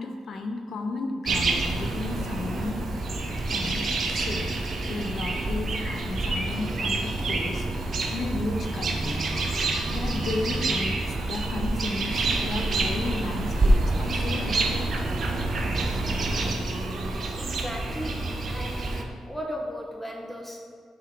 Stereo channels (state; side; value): normal; both; correlation 0.84